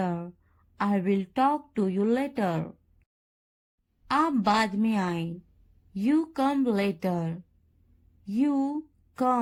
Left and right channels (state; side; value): identical; both; correlation 1.00